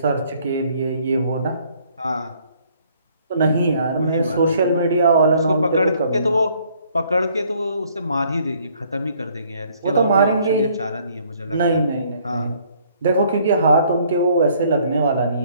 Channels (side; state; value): both; inverted; correlation -0.63